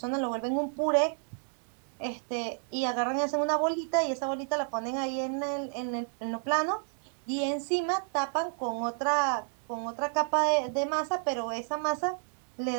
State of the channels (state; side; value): silent; left; 57 dB below the other